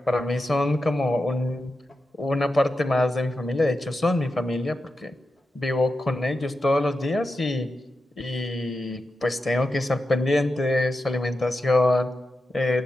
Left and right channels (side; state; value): both; normal; correlation 0.90